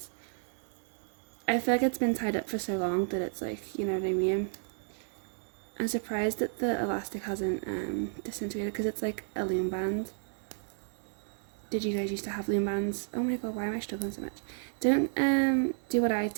I feel like it's been tied up for so long that it's you know what I mean? I'm surprised that the elastic hasn't disintegrated because it's like a loom band. Did you guys used to have loom bands? Oh my god, why am I struggling so much? Don't do what I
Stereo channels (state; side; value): silent; left; digital silence